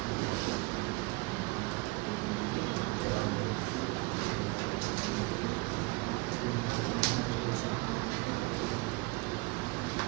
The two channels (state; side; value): quieter; left; 25.4 dB